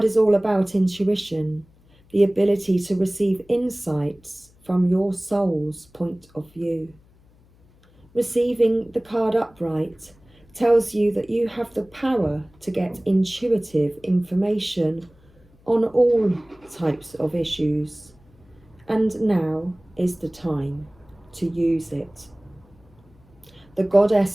is all about intuition, the ability to receive insights from your soul's point of view. Receiving the card upright tells you that you have the power to get intuitive information on all types of issues, and now is the time to use it. The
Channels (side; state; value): left; noise; hum, 29 dB below the sound